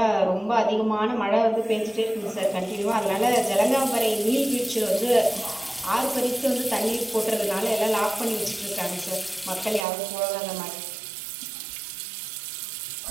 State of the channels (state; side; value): drops out; left; at 9.9 s